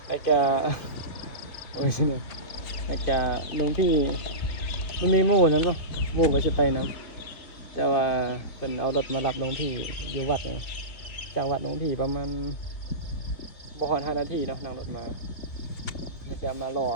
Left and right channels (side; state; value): right; late; 2.8 ms